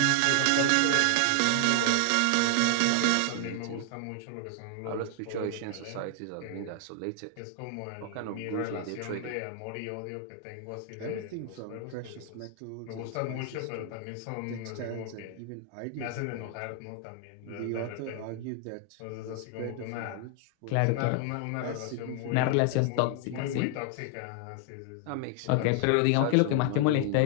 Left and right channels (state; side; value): different; both; correlation 0.00